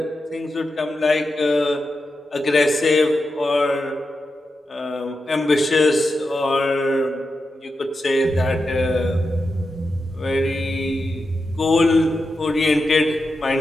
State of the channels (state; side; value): normal; both; correlation 0.89